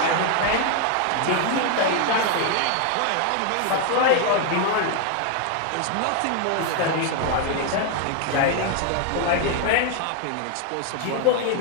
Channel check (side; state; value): both; different; correlation 0.00